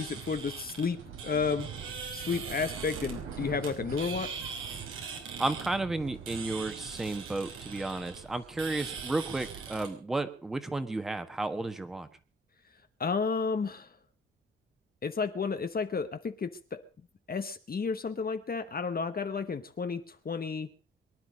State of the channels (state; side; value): normal; both; correlation 0.54